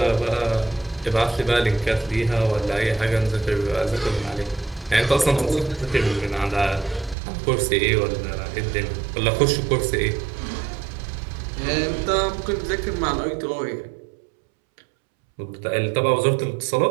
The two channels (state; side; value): drops out; left; at 7.2 s